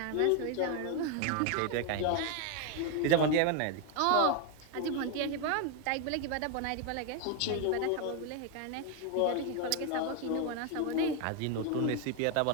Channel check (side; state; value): both; different; correlation 0.01